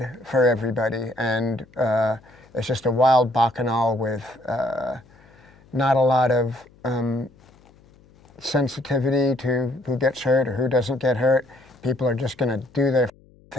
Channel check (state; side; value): noise; left; hum, 28 dB below the sound